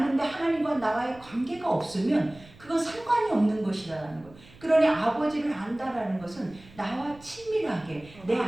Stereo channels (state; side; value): noise; right; rumble, 22 dB below the sound